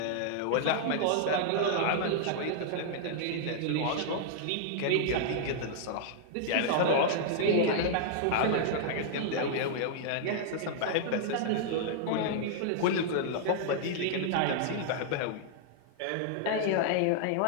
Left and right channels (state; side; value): different; both; correlation -0.01